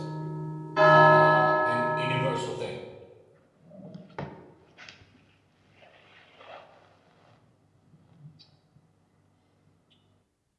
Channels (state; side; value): identical; both; correlation 1.00